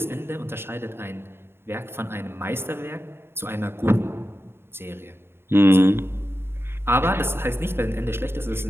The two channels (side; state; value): left; late; 0.11 ms